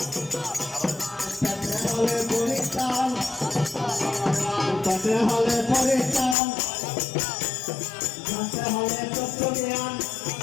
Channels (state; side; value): drops out; right; at 6.4 s